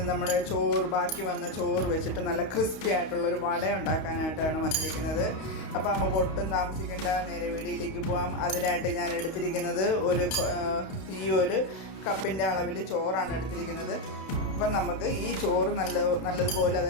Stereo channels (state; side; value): late; right; 32 ms